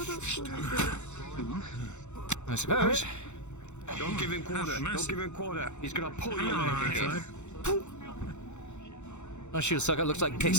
I suppose. Don't give him quarter. Don't give him quarter. He's gonna pull you Alright. My shield sucker looks like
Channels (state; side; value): late; right; 0.83 ms